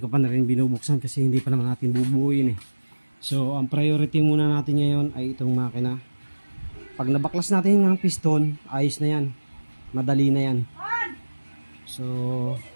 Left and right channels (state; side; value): inverted; both; correlation -1.00